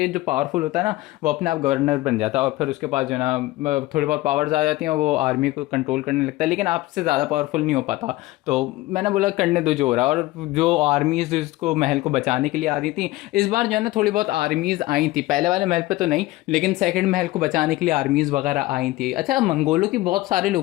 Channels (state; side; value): quieter; right; 18.4 dB